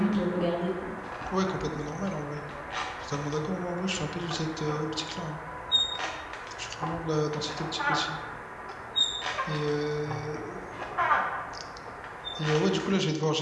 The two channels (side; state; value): both; identical; correlation 1.00